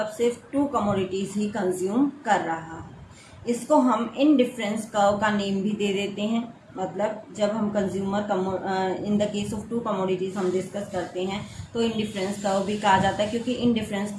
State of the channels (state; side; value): identical; both; correlation 1.00